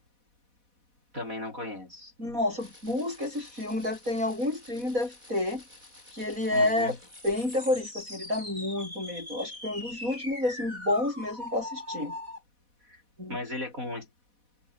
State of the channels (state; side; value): late; left; 4.1 ms